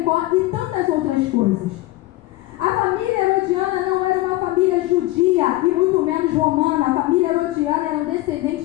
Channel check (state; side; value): quieter; right; 18.2 dB